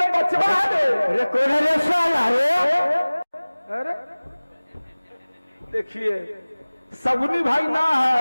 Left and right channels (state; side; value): inverted; both; correlation -1.00